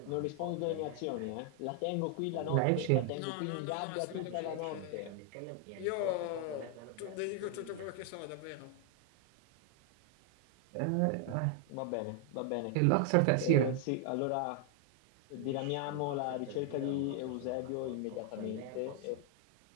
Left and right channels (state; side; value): different; both; correlation 0.00